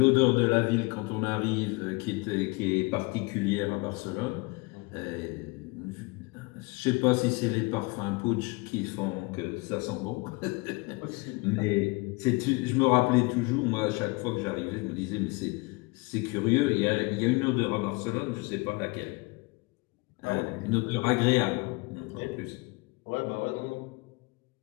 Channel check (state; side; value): quieter; right; 26.6 dB